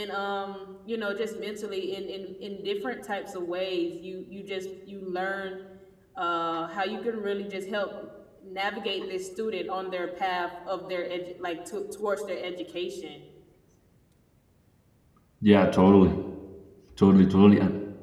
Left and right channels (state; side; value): identical; both; correlation 1.00